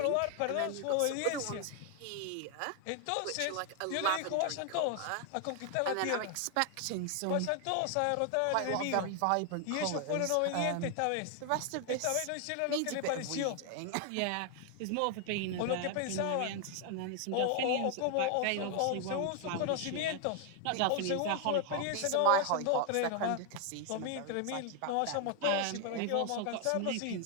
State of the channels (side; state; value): both; different; correlation 0.00